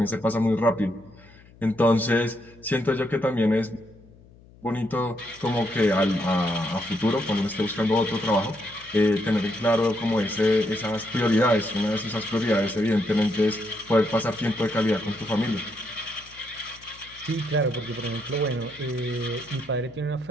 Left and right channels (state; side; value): noise; left; hum, 25 dB below the sound